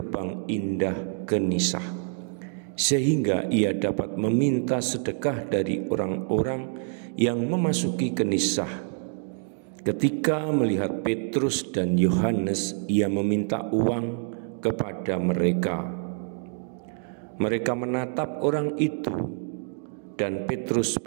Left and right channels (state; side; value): silent; left; 60 dB below the other